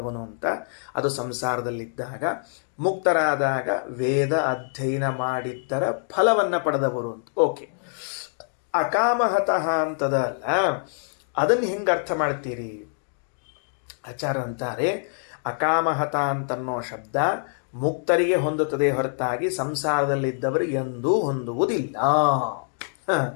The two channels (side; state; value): right; silent; digital silence